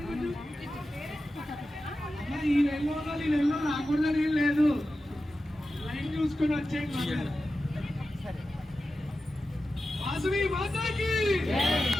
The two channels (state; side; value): normal; both; correlation 0.93